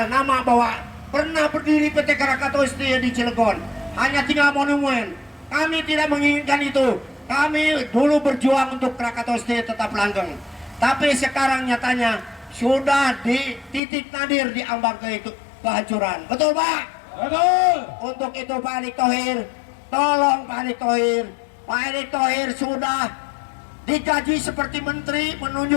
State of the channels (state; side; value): drops out; right; at 13.8 s